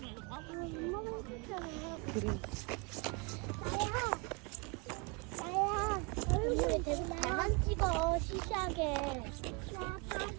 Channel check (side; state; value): left; quieter; 30.7 dB